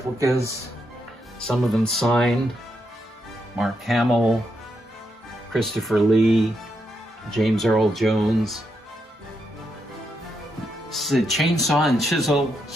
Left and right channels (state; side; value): normal; both; correlation 0.81